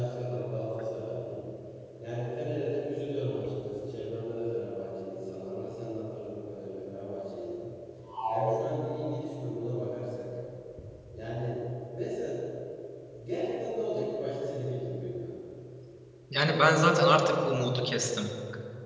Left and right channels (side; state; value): both; identical; correlation 1.00